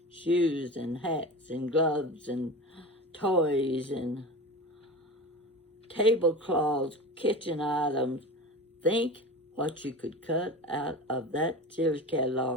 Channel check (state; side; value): normal; both; correlation 0.30